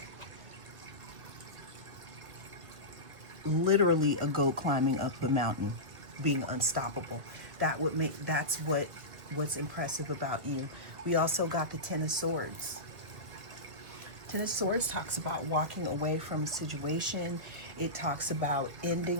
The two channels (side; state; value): left; late; 1.8 ms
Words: literally a goat climbing up the mountain, being unstoppable. That's what's impressive about you. We also got the Ten of Swords. Ten of Swords talks about walking away from a situation. It talks about